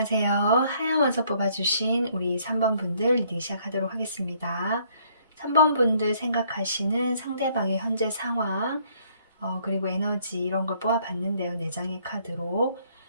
하얀 원서 뽑아주신 우리 3번 분들 리딩 시작하도록 하겠습니다. 3번 분들 생각하시는 상대방의 현재 상황, 그리고 에너지 이런 걸 뽑아봤는데요. 4장의 카드로.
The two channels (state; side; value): inverted; both; correlation -0.64